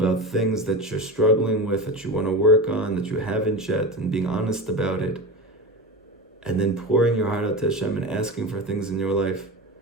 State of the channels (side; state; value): both; normal; correlation 0.24